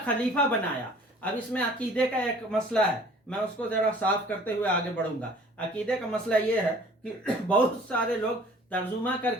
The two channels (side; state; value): both; normal; correlation 0.51